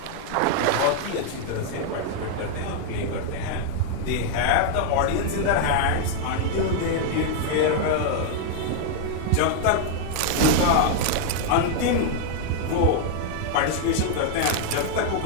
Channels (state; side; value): different; both; correlation 0.00